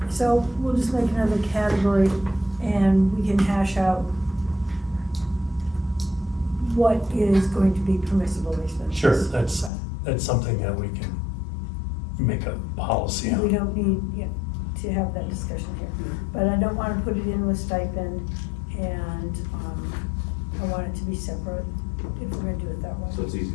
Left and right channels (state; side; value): drops out; right; at 9.7 s